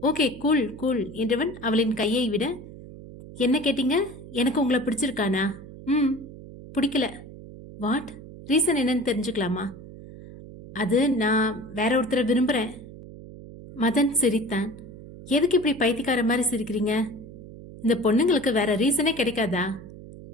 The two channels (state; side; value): noise; right; hum, 16 dB below the sound